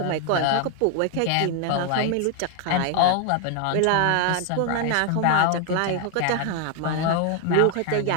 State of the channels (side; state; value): both; different; correlation 0.01